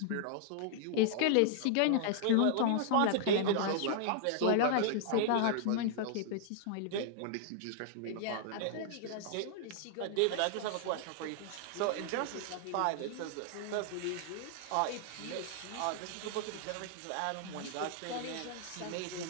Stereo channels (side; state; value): both; different; correlation -0.01